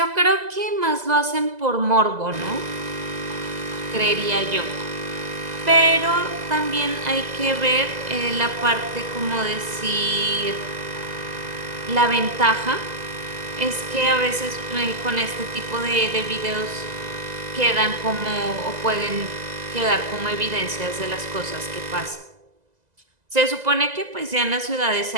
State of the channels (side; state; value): left; late; 2.0 ms